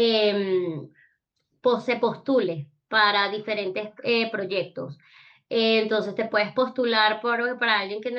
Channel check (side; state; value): both; identical; correlation 1.00